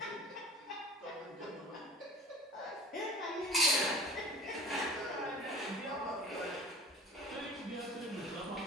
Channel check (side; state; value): both; normal; correlation 0.42